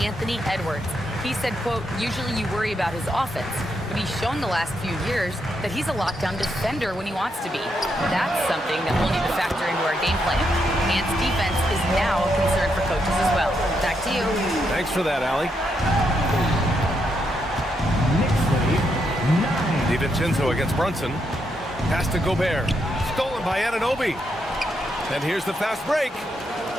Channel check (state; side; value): normal; both; correlation 0.80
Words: Edwards. He said, quote, usually you worry about his offense, but he's shown the last few years that he's a lockdown defender when he wants to be. That's something that we'll need to factor into our game plan. Ant's defense is now a concern for coaches as well. Back to you. Thanks for that, Allie. DiVincenzo against Brunson. Pass to Gobert. Stolen by Anunoby. And here's the fast break.